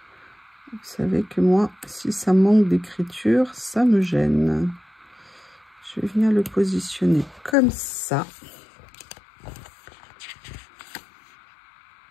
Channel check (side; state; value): right; drops out; at 7.6 s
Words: Vous savez que moi, si ça manque d'écriture, ça me gêne. Je vais venir le positionner comme ça.